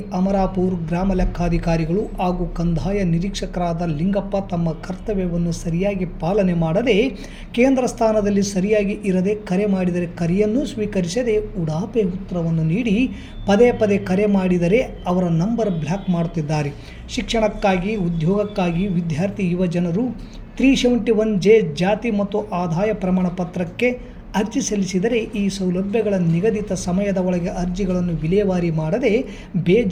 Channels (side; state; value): both; identical; correlation 1.00